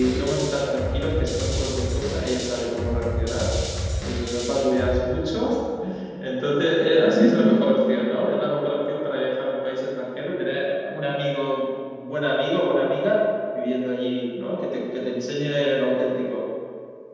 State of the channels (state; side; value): identical; both; correlation 1.00